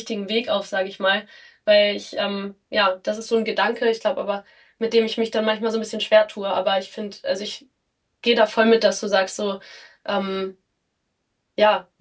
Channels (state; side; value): identical; both; correlation 1.00